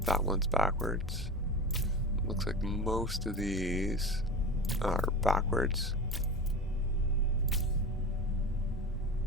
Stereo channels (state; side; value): normal; both; correlation 0.29